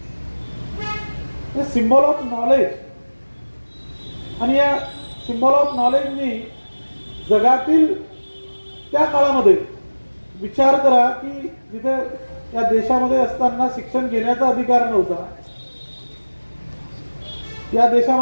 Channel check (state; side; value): inverted; both; correlation -1.00